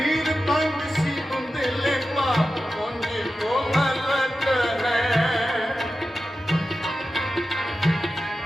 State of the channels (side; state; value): both; normal; correlation 0.92